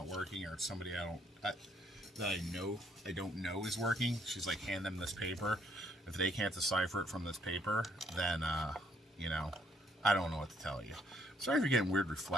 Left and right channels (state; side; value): normal; both; correlation 0.67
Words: working, or it's somebody that I don't know is working, she's like, hand them this paper. If they can't decipher it from this paper, then I don't know what to tell you. Sorry if you're getting weird